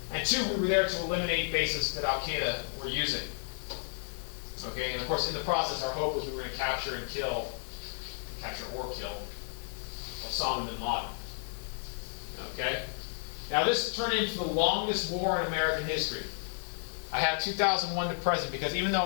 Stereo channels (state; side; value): silent; right; digital silence